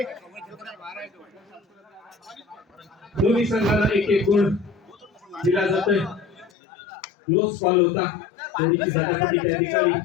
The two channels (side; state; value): right; drops out; at 6.5 s